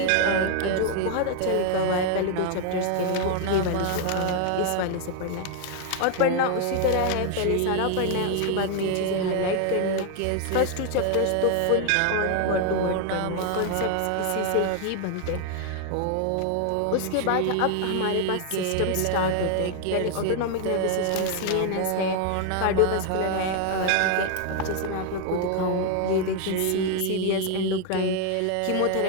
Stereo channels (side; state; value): both; different; correlation 0.00